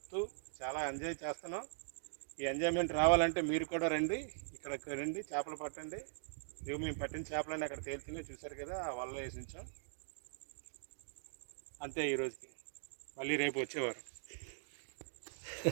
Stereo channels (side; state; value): left; silent; digital silence